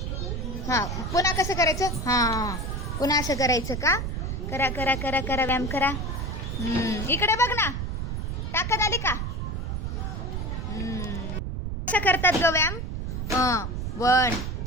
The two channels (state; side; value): noise; right; rumble, 3 dB below the sound